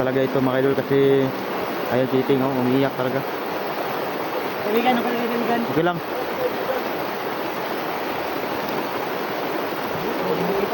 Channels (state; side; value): identical; both; correlation 1.00